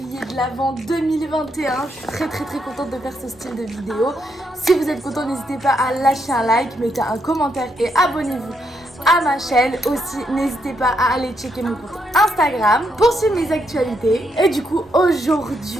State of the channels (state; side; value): normal; both; correlation 0.78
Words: de l'Avent 2021. Je suis très contente de faire ce style de vidéo. Si vous êtes content, n'hésitez pas à lâcher un like, mettez un commentaire et abonnez-vous à ma chaîne. Aussi, n'hésitez pas à aller checker mon compte Instagram pour suivre mes actualités. Et du coup,